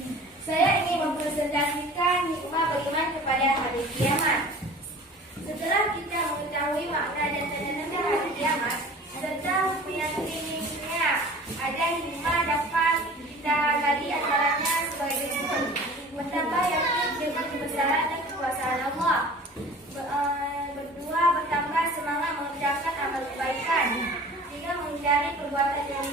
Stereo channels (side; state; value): both; normal; correlation 0.43